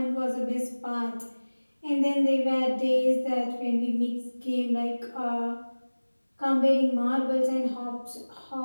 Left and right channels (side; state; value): both; inverted; correlation -1.00